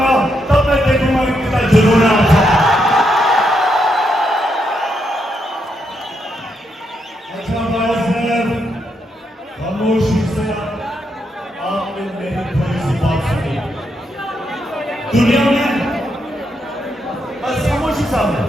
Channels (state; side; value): normal; both; correlation 0.80